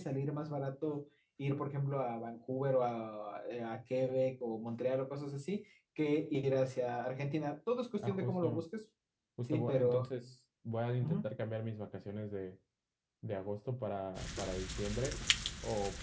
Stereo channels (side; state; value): both; identical; correlation 1.00